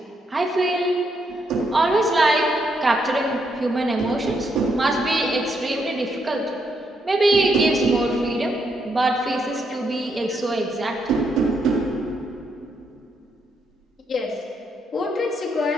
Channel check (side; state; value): both; normal; correlation 0.77